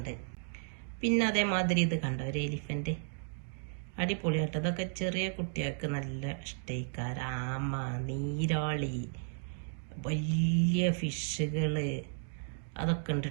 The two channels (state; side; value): silent; left; digital silence